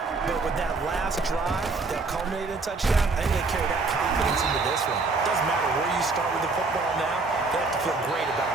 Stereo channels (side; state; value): left; quieter; 3.8 dB